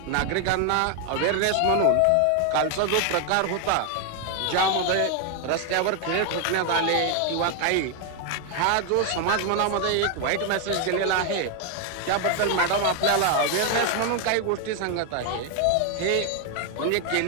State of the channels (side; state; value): both; different; correlation 0.01